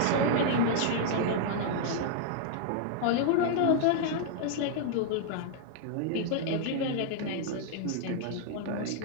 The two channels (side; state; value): both; different; correlation -0.01